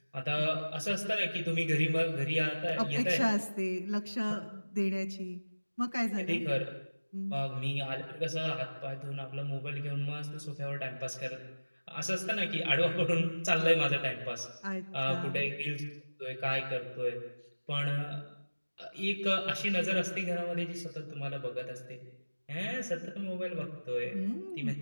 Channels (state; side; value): inverted; both; correlation -1.00